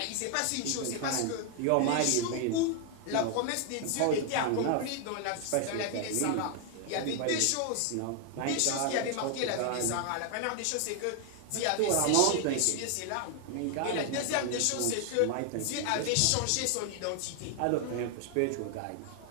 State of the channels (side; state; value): both; different; correlation 0.00